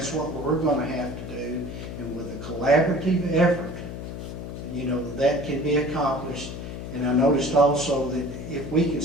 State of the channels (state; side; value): noise; left; hum, 8 dB below the sound